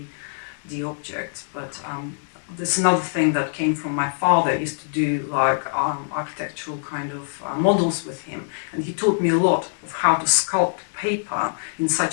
object. But There's another thing that came from my father. I used to do like architectural kind of models with him, and he taught me a lot of how to sculpt paper in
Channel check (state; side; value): silent; right; digital silence